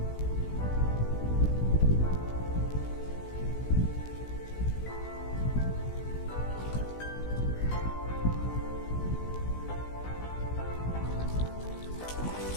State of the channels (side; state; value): right; late; 16 ms